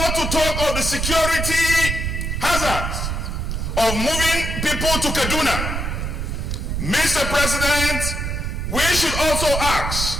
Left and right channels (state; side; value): noise; right; rumble, 2 dB below the sound